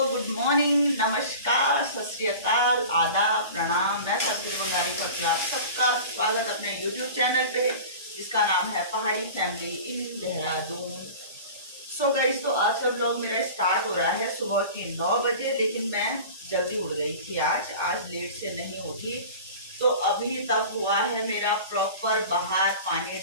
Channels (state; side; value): inverted; both; correlation -0.37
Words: गुड मॉर्निंग, नमस्कार, सत श्री अकाल, आदाब, प्रणाम। मैं सतगुरु बंगारी प्रत्याग सबका स्वागत अपने YouTube चैनल पे, जिसका नाम है पहाड़ी family in Dehradun. So guys तो आज का ब्लॉग मेरा स्टार्ट हो रहा है सुबह की 9 बजे, लेकिन मैं जल्दी उठ गई थी आज लेट से नहीं उठी। तो अभी तक हुआ है मेरा प्रॉपर बाहर पानी